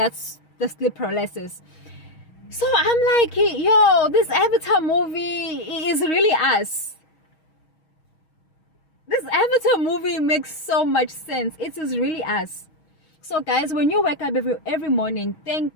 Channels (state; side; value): late; right; 6.3 ms